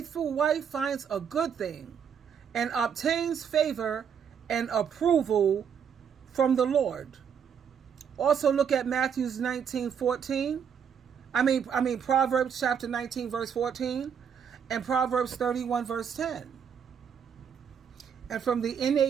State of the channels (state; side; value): quieter; left; 7.5 dB